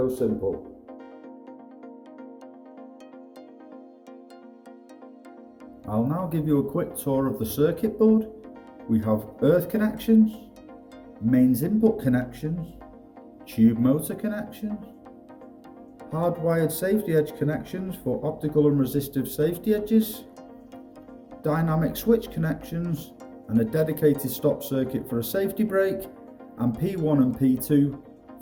Simple. I'll now give you a quick tour of the circuit board. We have earth connections, mains input connections, tube motor connections, hardwired safety edge connections for optical and resistive safety edges, dynamic switch connections, and a dedicated stop circuit for a safety brake, and P1 and P2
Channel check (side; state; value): both; identical; correlation 1.00